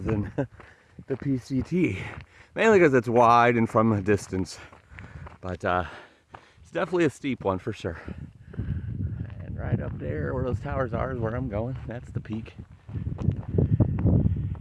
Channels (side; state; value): both; identical; correlation 1.00